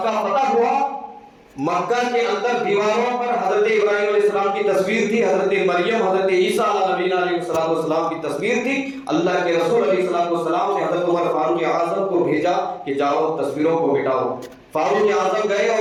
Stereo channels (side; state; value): both; identical; correlation 1.00